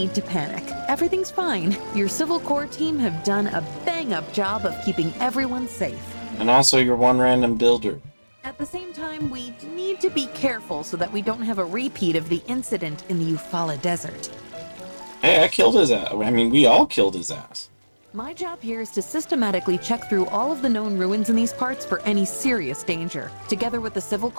to panic. Everything's fine. Your Civil Corps team have done a bang-up job of keeping everyone safe. And also, you're one random builder. At the same time, we need to be careful so that we don't have a repeat of the incident in the Eufaula Desert. Hey, I killed his ass. I mean, we all killed his ass. My job here is to systematically check through all of the known ruins in these parts for any serious danger. Together with the Civil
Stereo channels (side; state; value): both; inverted; correlation -1.00